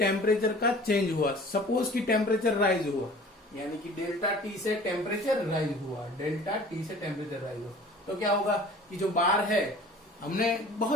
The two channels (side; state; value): both; normal; correlation 0.46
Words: का चेंज हुआ, सपोज कि टेम्परेचर राइज हुआ, यानी कि डेल्टा टी से टेम्परेचर राइज हुआ, डेल्टा टी से टेम्परेचर राइज हुआ, तो क्या होगा कि जो बार है, हमने